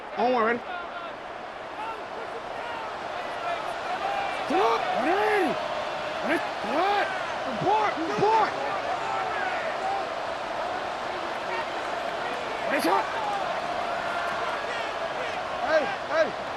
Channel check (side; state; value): both; identical; correlation 1.00